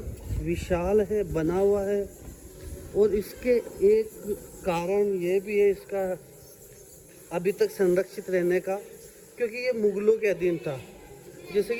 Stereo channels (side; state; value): both; identical; correlation 1.00